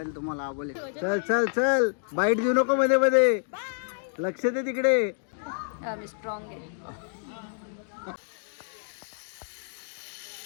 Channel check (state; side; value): silent; right; digital silence